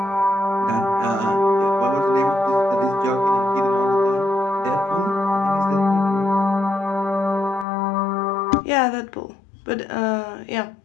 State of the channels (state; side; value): drops out; right; at 7.7 s